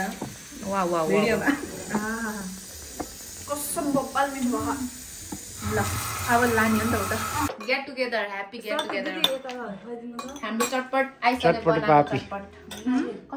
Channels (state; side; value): identical; both; correlation 1.00